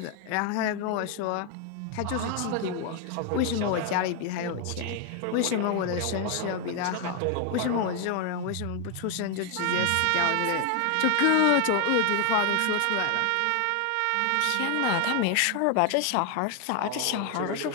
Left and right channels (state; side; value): different; both; correlation 0.01